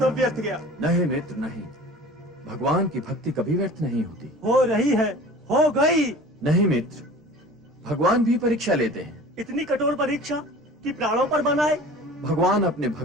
व्यर्थ गया। नहीं मित्र नहीं, भगवान की भक्ति कभी व्यर्थ नहीं होती। हो रही है, हो गई। नहीं मित्र, भगवान भी परीक्षा लेते हैं। इतनी कठोर परीक्षा कि प्राणों पर बनाए। भगवान अपने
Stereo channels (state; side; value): normal; both; correlation 0.42